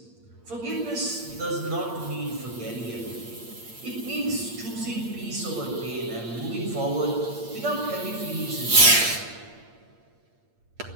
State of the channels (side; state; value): left; late; 8.6 ms